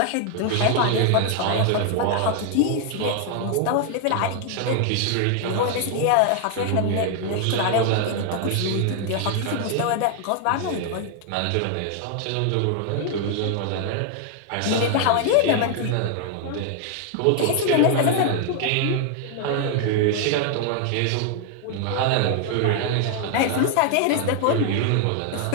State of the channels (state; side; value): different; both; correlation 0.00